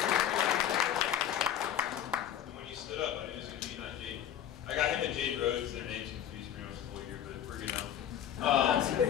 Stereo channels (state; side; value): quieter; right; 10.3 dB